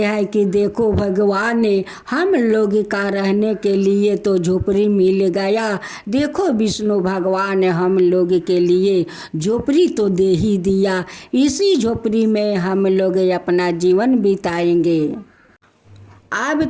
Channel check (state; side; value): identical; both; correlation 1.00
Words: कि देखो भगवान ने हम लोग का रहने के लिए तो झोपड़ी मिल गया, देखो विष्णु भगवान ने हम लोग के लिए झोपड़ी तो दे ही दिया, इसी झोपड़ी में हम लोग अपना जीवन बिताएंगे। अब